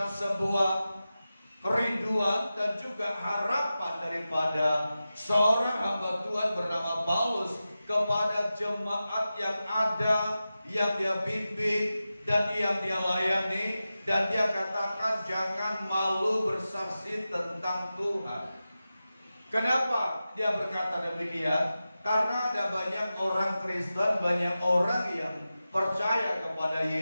sebuah kerinduan dan juga harapan daripada seorang hamba Tuhan bernama Paulus kepada jemaat yang ada, yang dia bimbing dan yang dia layani, dan dia katakan jangan malu bersaksi tentang Tuhan. Kenapa dia berkata demikian? Karena ada banyak orang Kristen, banyak orang yang percaya kepada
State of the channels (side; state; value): both; inverted; correlation -0.93